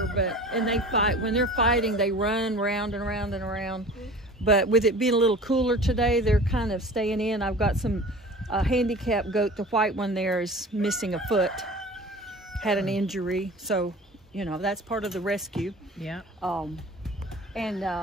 and they fight. When they're fighting, they run round and around and around. But with it being a little cooler today, they're kind of staying in. I've got some handicapped goat. The white one there is missing a foot, had an injury, so you know that's part of the rescue. Yeah. And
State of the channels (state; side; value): normal; both; correlation 0.40